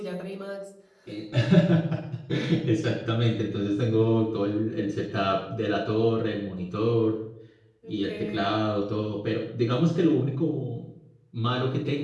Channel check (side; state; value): both; identical; correlation 1.00